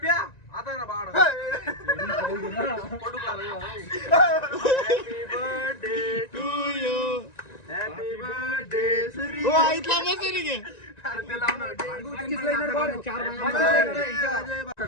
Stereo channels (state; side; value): late; right; 1.9 ms